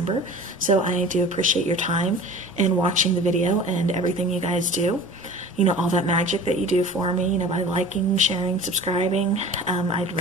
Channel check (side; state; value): both; normal; correlation 0.40